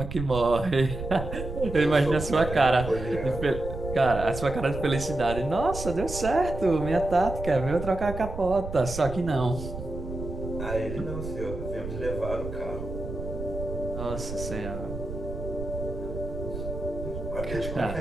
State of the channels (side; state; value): right; noise; rumble, 8 dB below the sound